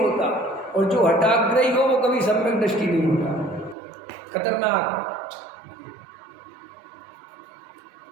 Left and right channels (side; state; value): left; drops out; at 3.8 s